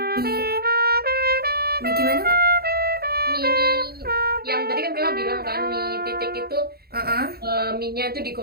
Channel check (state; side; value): late; left; 0.45 ms